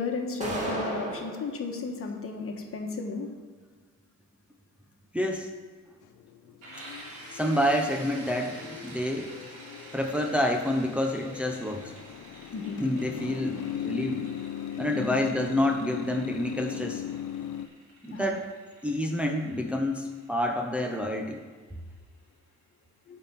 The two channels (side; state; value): both; normal; correlation 0.60